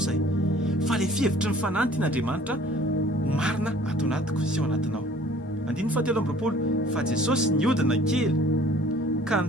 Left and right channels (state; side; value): normal; both; correlation 0.53